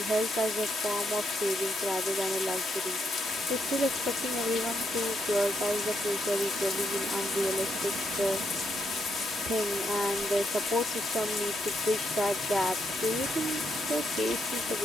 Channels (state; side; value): normal; both; correlation 0.78